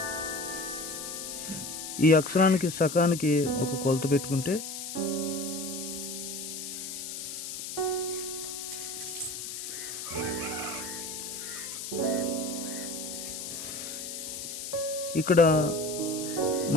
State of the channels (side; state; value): left; noise; hiss, 7 dB below the sound